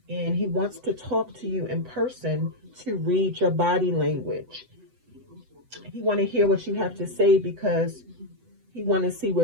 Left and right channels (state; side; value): late; left; 8.0 ms